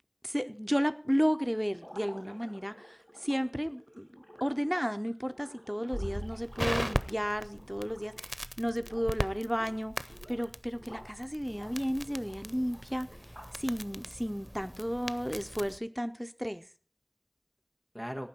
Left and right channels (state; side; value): identical; both; correlation 1.00